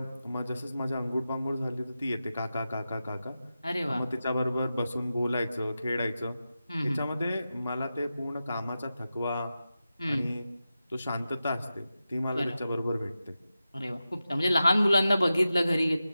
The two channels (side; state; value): both; inverted; correlation -0.92